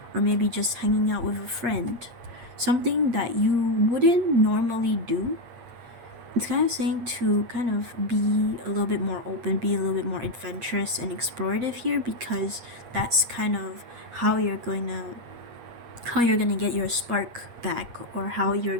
or maybe just hanging out with a friend, something that you wouldn't normally do, it's kind of saying to kind of be a little bit more open, be a little bit more adventurous and explorative here, because that's kind of how you're going to get your spark back, or how you're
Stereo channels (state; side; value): late; left; 8.4 ms